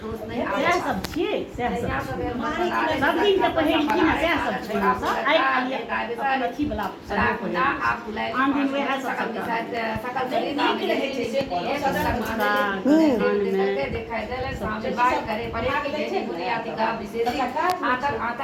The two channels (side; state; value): both; identical; correlation 1.00